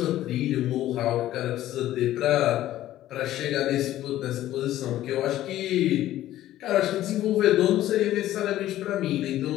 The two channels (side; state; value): right; quieter; 13.8 dB